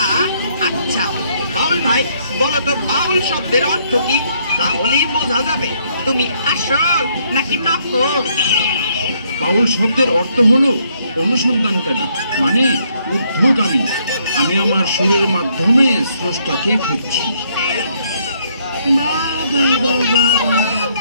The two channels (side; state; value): both; inverted; correlation -0.70